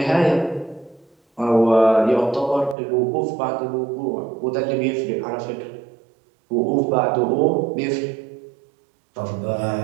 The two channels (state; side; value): drops out; left; at 2.8 s